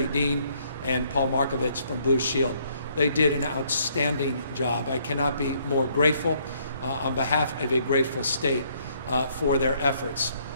Dean and Paul Markovich from Blue Shield. They did an outstanding job. I cannot be more grateful on behalf of a grateful state for their efforts.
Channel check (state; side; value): inverted; both; correlation -0.67